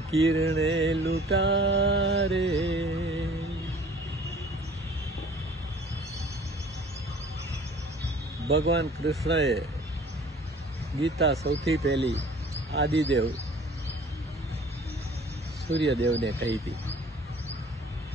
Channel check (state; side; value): normal; both; correlation 0.50